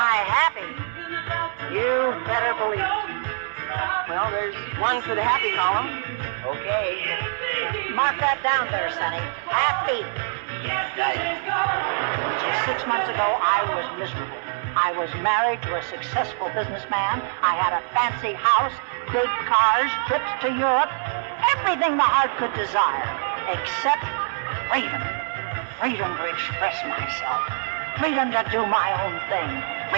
happy? You better believe it. Well, there's one for the happy column. Okay. Mark that down there, Sonny. Happy. Just 6 months ago, I was miserable. I was married to a successful businessman. I had a fancy house, big cars, trips to Europe, everything the heart could desire, except freedom. Freedom to express myself. Freedom to do my own thing.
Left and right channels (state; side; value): silent; left; 62 dB below the other